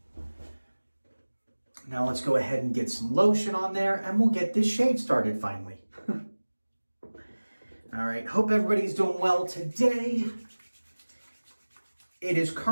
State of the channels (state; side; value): inverted; both; correlation -1.00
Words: Now let's go ahead and get some lotion on there and we'll get this shave started finally. All right, hope everybody's doing well today. It is